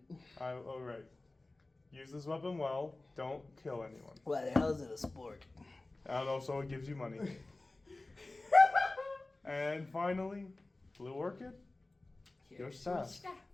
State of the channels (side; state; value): right; quieter; 3.0 dB